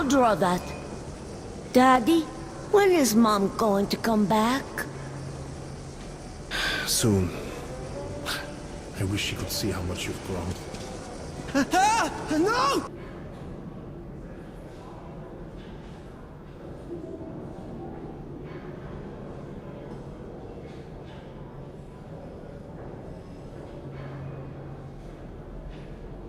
draw that. Daddy, when is Mom going to come back? Soon. I wish she could see how much you've grown. No!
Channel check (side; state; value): both; identical; correlation 1.00